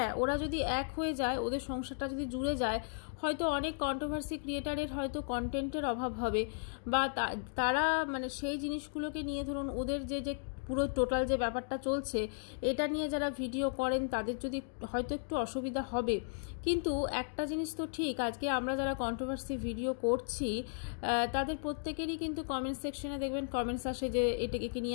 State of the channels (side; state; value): right; silent; digital silence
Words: ওরা যদি এক হয়ে যায়, ওদের সংসারটা যদি জুড়ে যায়, হয়তো অনেক কন্ট্রোভার্সি ক্রিয়েটারের হয়তো কন্টেন্টের অভাব হবে, বা তারা মানে সেই জিনিসগুলোকে নিয়ে ধরুন ওদের যে পুরো টোটাল যে ব্যাপারটা চলছে এটা নিয়ে যারা ভিডিও করেন তাদের যদি হয়তো একটু অসুবিধা হবে। কিন্তু একটা জিনিস তো ঠিক, আজকে আমরা যারা কন্ট্রোভার্সি ভিডিও করছি তাদের প্রত্যেকেরই কিন্তু কমেন্ট সেকশনে দেখবেন কমেন্টস আসে যে এটাকে